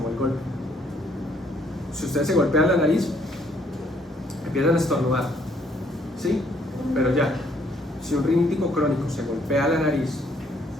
el golpe. Si ustedes se golpean la nariz, empiezan a estornudar, ¿sí? Pero ya, si un rinítico crónico se golpea la nariz,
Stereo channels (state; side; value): normal; both; correlation 0.67